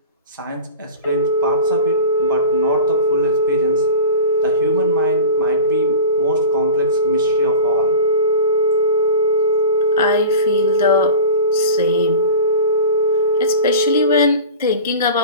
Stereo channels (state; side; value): inverted; both; correlation -0.34